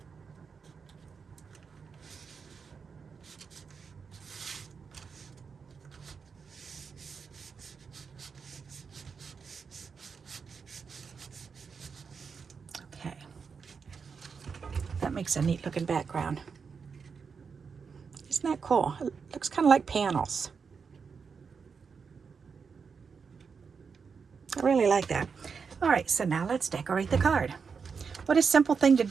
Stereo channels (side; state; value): left; quieter; 5.7 dB